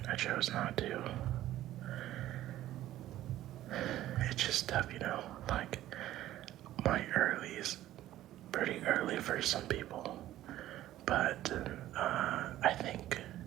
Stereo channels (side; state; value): left; quieter; 13.9 dB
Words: I chose not to. It's just tough, you know, like my early is pretty early for some people, but I think